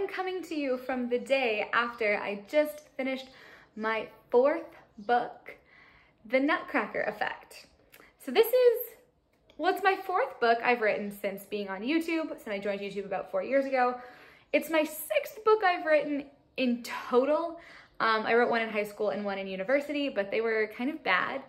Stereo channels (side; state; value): both; identical; correlation 1.00